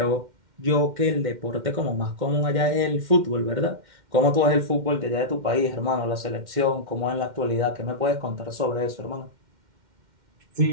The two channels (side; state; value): left; late; 2.1 ms